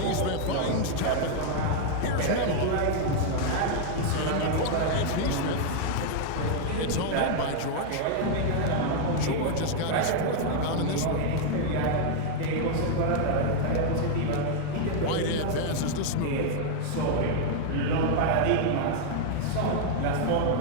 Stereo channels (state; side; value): different; both; correlation 0.00